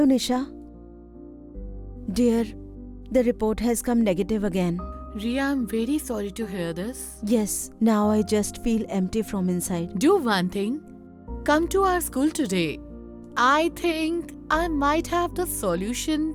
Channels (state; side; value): identical; both; correlation 1.00